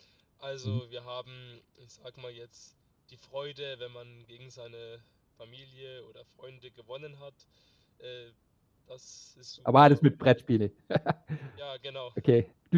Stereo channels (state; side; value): identical; both; correlation 1.00